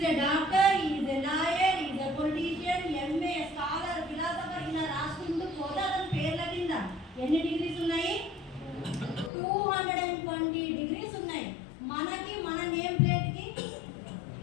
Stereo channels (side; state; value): right; drops out; at 9.3 s